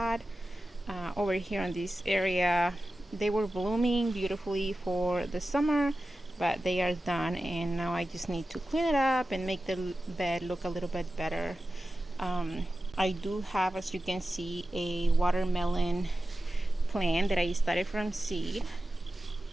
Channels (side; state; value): both; normal; correlation 0.94